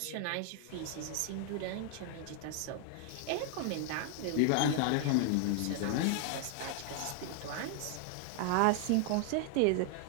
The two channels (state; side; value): different; both; correlation 0.00